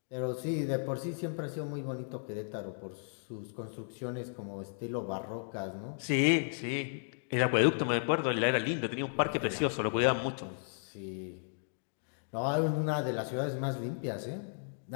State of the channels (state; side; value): silent; right; digital silence